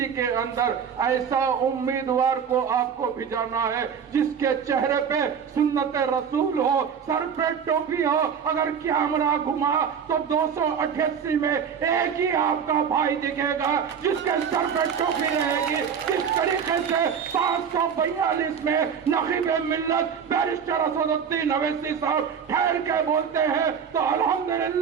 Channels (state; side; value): quieter; left; 7.2 dB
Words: کے اندر ایسا امیدوار کو آپ کو بھیجانا ہے جس کے چہرے پہ سنت رسول ہو، سر پہ ٹوپی ہو. اگر کیمرہ گھما تو 288 میں ایک ہی آپ کا بھائی دکھے گا جس کے سر پہ ٹوپی رہے گی. اس طریقے سے 542 میں نقیب ملت بیرسٹر اسد الدین اویسی صاحب ٹھہر کے بولتے ہیں تو